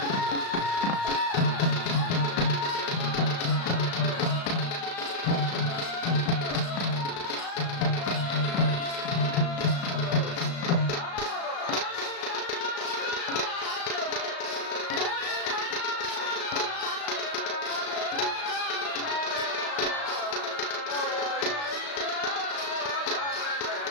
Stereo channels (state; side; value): late; right; 35 ms